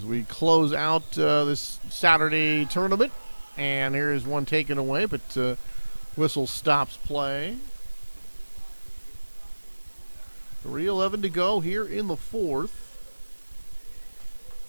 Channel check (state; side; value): inverted; both; correlation -1.00